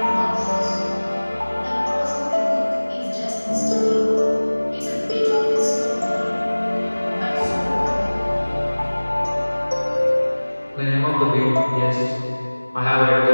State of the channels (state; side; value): inverted; both; correlation -1.00